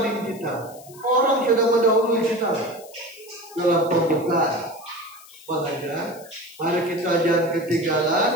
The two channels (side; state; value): left; noise; hiss, 21 dB below the sound